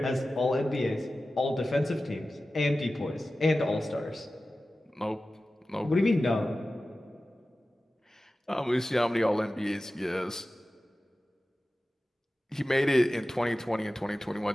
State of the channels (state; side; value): normal; both; correlation 0.95